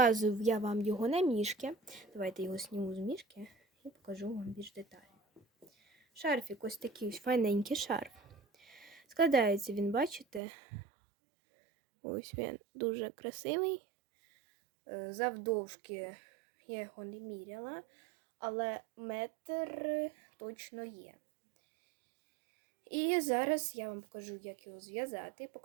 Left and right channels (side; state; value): left; drops out; at 10.4 s